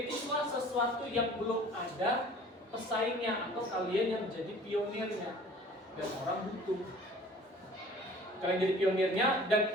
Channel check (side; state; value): both; normal; correlation 0.48